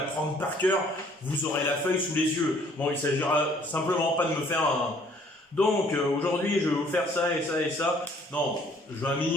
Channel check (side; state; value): both; normal; correlation 0.60